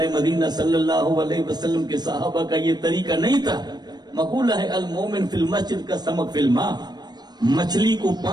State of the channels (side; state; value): left; late; 0.20 ms